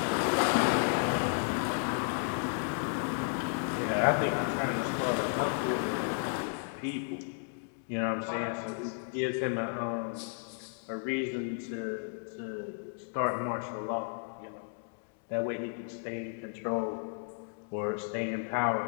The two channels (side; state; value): right; silent; digital silence